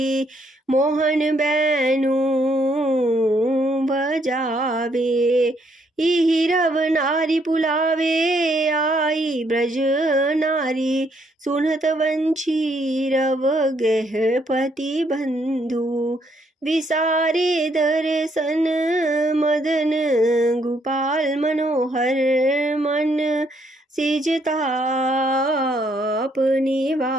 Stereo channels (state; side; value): normal; both; correlation 0.71